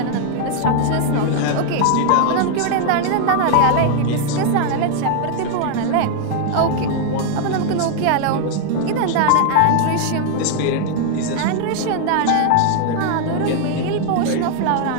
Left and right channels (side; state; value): both; different; correlation 0.00